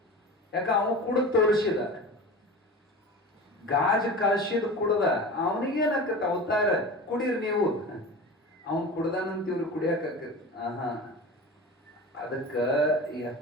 ಯಾಕ ಅವ ಕುಡಿದ್ ತೋರಿಸಿದ, ಗಾಜ್ ಕಾಶಿದ್ ಕುಡ್ದ. ಅವನಿಗೇನಾಕತ್ತ ಅವತಾರ, ಕುಡೀರ್ ನೀವು. ಅವನ್ ಕುಡ್ದಾನಂತ ಇವ್ರು ಕುಡಿಯಾಕತ್ತ. ಅದಕ್ಕ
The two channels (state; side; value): normal; both; correlation 0.33